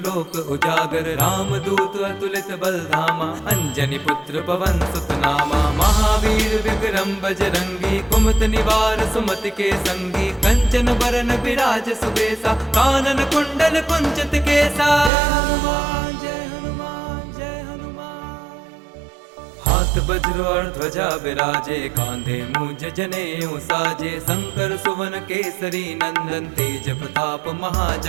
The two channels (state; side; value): drops out; left; at 15.1 s